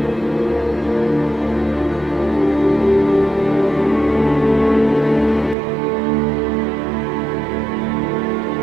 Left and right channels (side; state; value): left; drops out; at 5.6 s